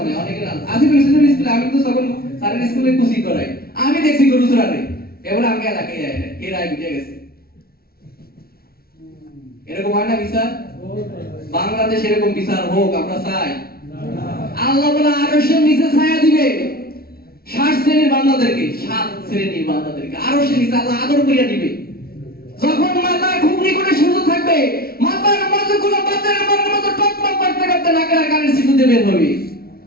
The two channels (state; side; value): late; right; 0.44 ms